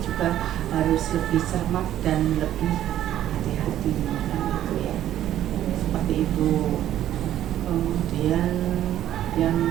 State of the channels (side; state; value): left; quieter; 12.0 dB